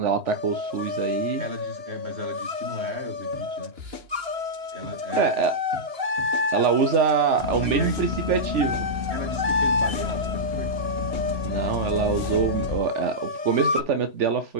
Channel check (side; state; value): left; late; 2.9 ms